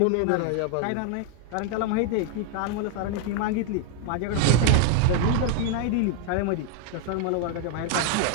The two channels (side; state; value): both; different; correlation 0.00